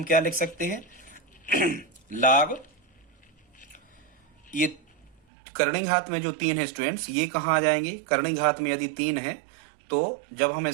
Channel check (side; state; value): left; drops out; at 5.2 s